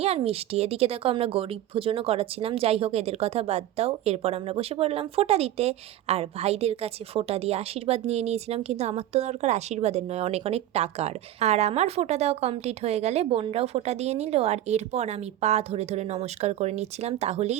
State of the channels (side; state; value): left; quieter; 13.0 dB